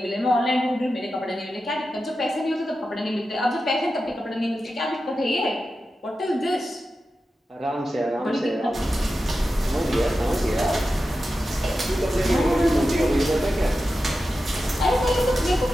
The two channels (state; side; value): normal; both; correlation 0.91